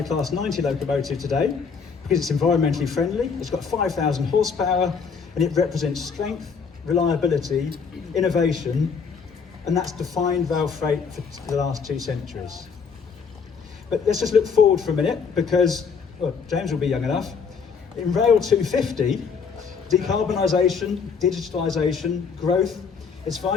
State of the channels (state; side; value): quieter; right; 5.8 dB